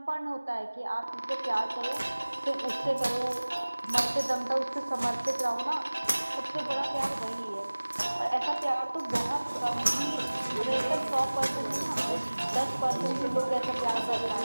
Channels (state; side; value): inverted; both; correlation -1.00